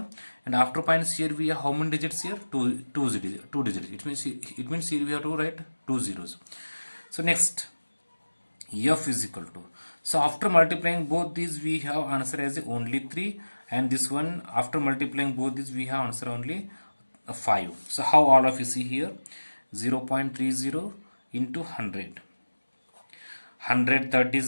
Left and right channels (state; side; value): inverted; both; correlation -1.00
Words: and after points here we have how many digits here? 2 digits. It means here we have to write 2 zeros. So next, f is equal to, so after multiplying both these we have answer as only 3, and this one after multiplying both these we have answer only 5. So how all of you see here, 0.30 into 100. 130